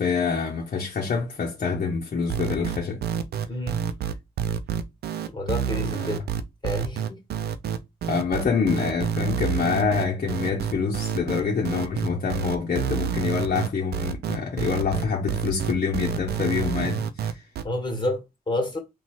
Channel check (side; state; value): both; normal; correlation 0.41